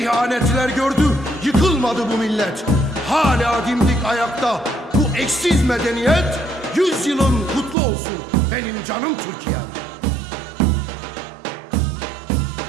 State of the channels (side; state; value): left; drops out; at 7.8 s